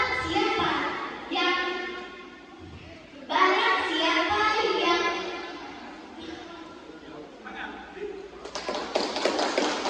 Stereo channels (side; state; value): both; identical; correlation 1.00